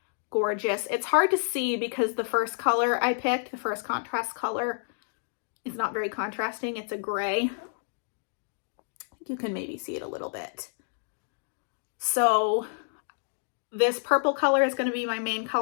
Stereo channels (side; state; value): right; silent; digital silence